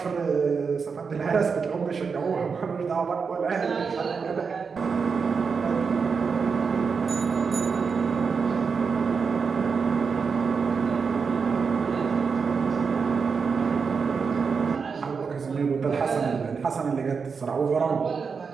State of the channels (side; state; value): left; quieter; 5.5 dB